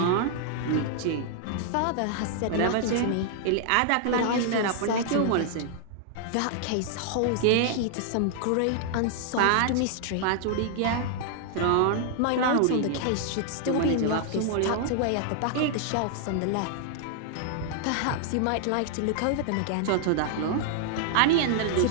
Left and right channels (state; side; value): different; both; correlation 0.00